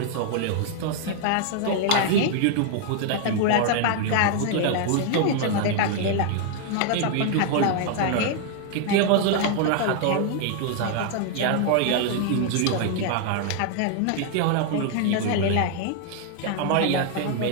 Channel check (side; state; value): both; different; correlation 0.00